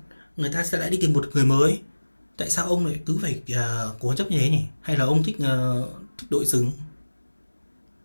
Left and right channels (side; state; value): both; inverted; correlation -1.00